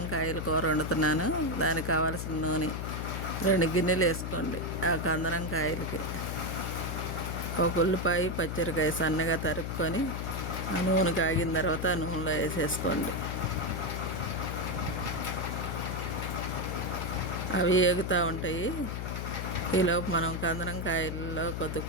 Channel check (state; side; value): noise; left; hum, 4 dB below the sound